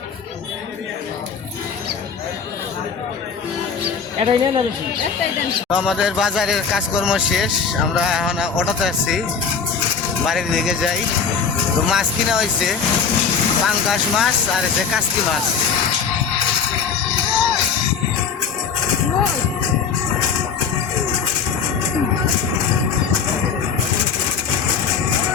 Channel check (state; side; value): quieter; right; 6.1 dB